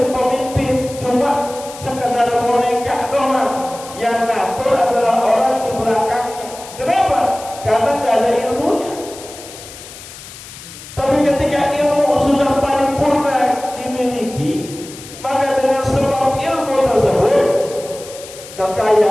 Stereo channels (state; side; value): noise; left; hiss, 15 dB below the sound